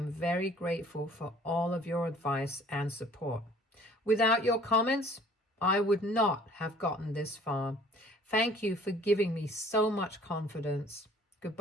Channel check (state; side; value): normal; both; correlation 0.53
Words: very grateful for all of your advice and support. Without your comments, I would not have gotten this far. Thank you for giving me so much confidence.